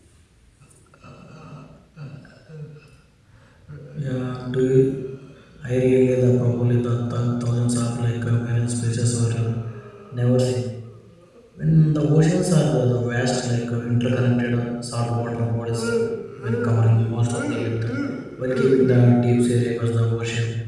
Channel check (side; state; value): both; identical; correlation 1.00